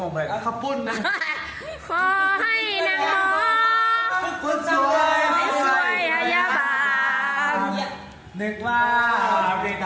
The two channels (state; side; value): identical; both; correlation 1.00